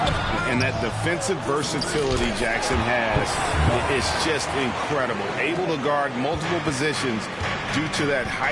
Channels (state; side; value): identical; both; correlation 1.00